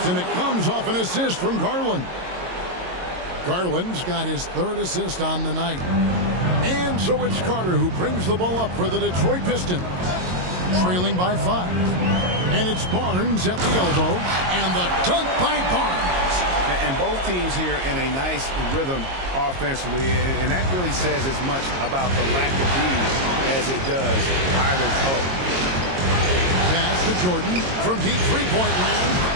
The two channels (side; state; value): left; late; 22 ms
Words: and it comes off an assist from Garland. Garland's got his 3rd assist on the night. And so it's Carter who brings the ball up for the Detroit Pistons. Trailing by 5. And it's Barnes at the elbow. And the dunk by Barnes. And both teams here in a nice rhythm offensively. And that really says as much about the lack of these as it does either's hope. Pass to Jordan from deep three-point land.